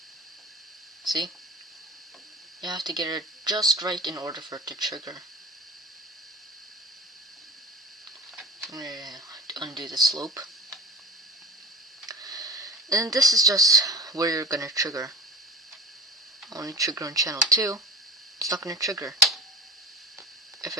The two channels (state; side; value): normal; both; correlation 0.33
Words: See? You have to get it just right in order for it to trigger. I'm gonna undo the slope. And this is just where you're gonna trigger. Only trigger on channel 2. It's not gonna trigger. If